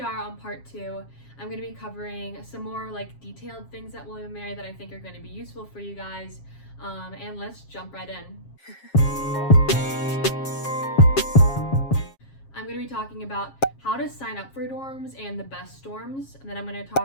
on part 2. I'm going to be covering some more like detailed things at William & Mary that I think are going to be useful for you guys. And let's jump right in. I'm going to be talking about how to sign up for dorms and the best dorms, and then I'm going to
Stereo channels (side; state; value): right; late; 7.4 ms